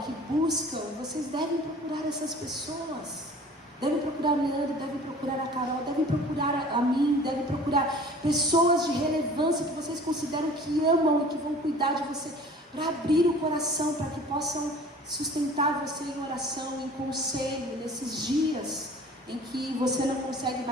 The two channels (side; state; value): both; normal; correlation 0.46